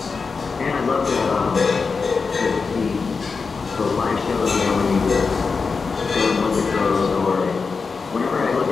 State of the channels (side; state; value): right; quieter; 4.8 dB